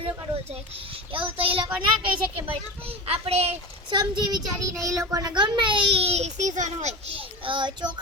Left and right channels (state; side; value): normal; both; correlation 0.27